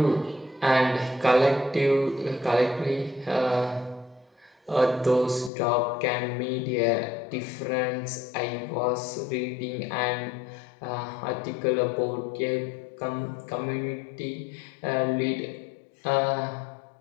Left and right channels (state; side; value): drops out; right; at 5.5 s